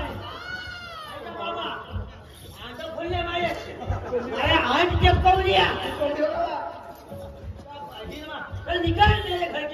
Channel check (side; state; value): both; identical; correlation 1.00